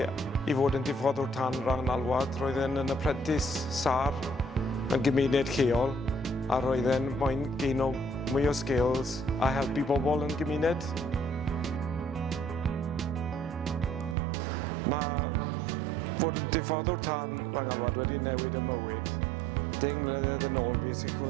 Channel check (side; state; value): left; drops out; at 14.2 s